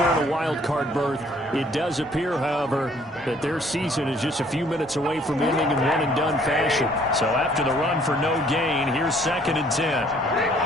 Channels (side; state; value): both; normal; correlation 0.60